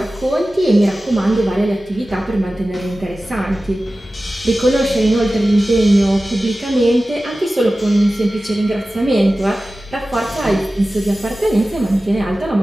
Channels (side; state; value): both; normal; correlation 0.96